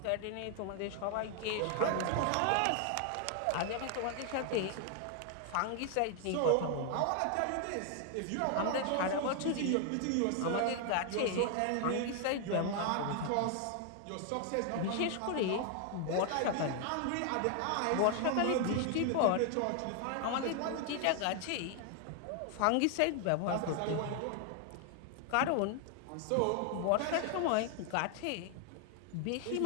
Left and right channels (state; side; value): different; both; correlation 0.00